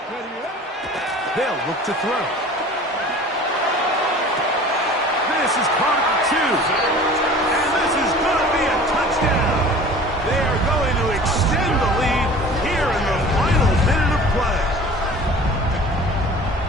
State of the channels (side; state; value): both; normal; correlation 0.43